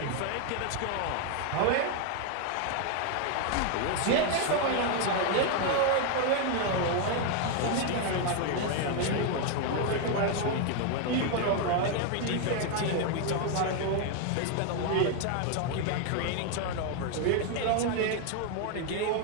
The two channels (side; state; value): both; different; correlation 0.01